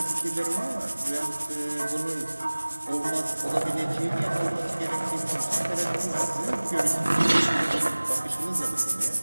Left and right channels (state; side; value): inverted; both; correlation -1.00